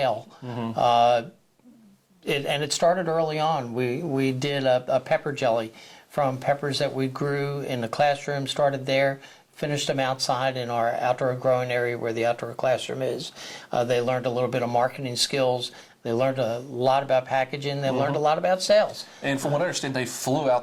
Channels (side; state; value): both; identical; correlation 1.00